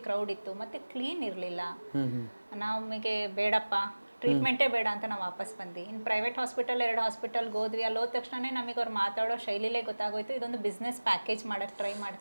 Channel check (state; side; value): inverted; both; correlation -1.00